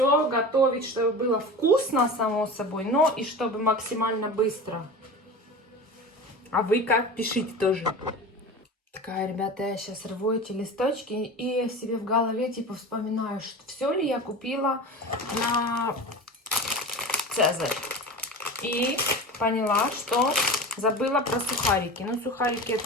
готовить, чтобы было вкусно, само собой, но и чтобы максимально быстро. А вы как? Пишите тоже. Такая, ребята, я сейчас рву эти листочки и себе в голове типа вспоминаю, что все ли я купила на Цезарь. И поняла, что забыла про сухарики. Но сухарики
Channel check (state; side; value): normal; both; correlation 0.32